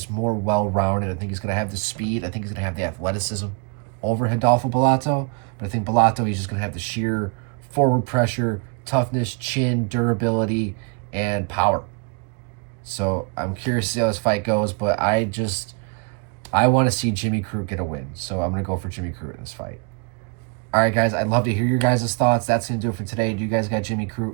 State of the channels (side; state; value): left; quieter; 32.8 dB